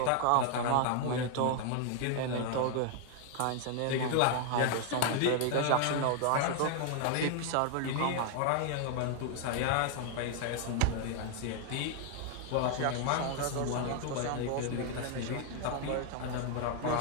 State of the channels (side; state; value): both; different; correlation 0.00